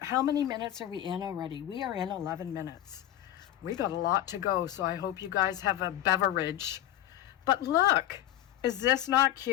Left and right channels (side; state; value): right; quieter; 12.9 dB